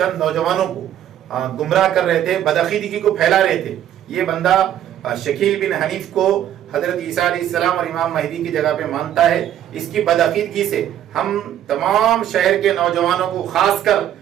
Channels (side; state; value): left; quieter; 11.1 dB